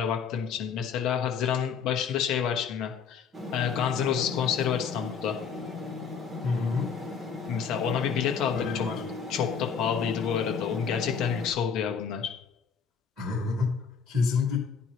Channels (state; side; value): quieter; right; 6.4 dB